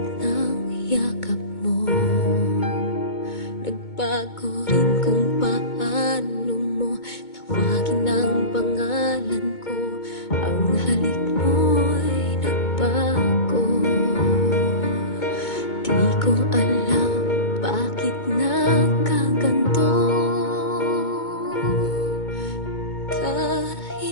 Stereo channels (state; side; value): late; right; 2.2 ms